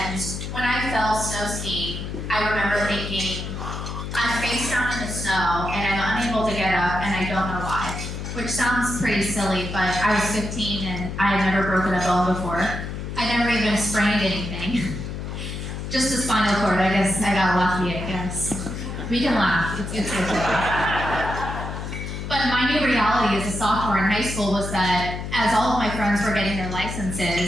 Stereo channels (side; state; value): left; noise; hum, 6 dB below the sound